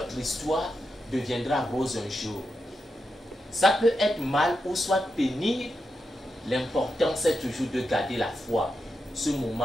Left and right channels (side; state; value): both; normal; correlation 0.87